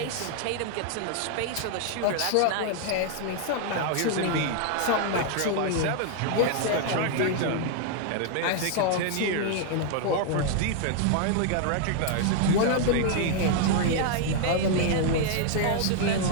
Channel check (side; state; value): both; different; correlation 0.00